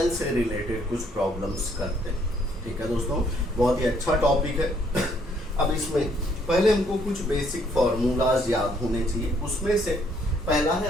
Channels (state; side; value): normal; both; correlation 0.67